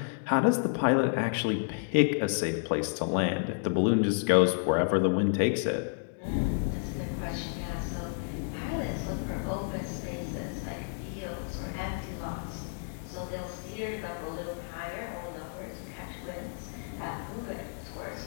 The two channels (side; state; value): right; silent; digital silence